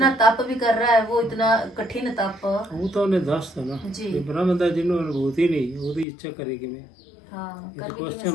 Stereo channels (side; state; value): right; drops out; at 6.1 s